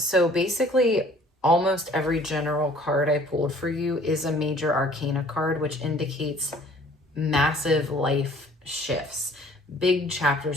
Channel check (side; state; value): both; normal; correlation 0.54